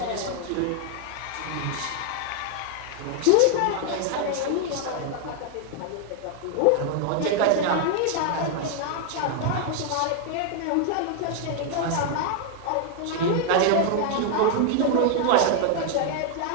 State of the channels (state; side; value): different; both; correlation 0.00